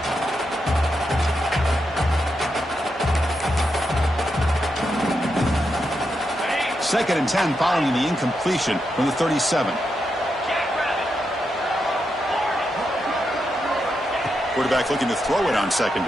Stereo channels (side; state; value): both; normal; correlation 0.85